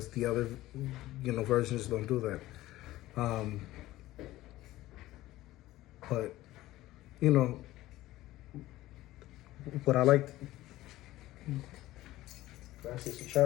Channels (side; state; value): right; quieter; 16.4 dB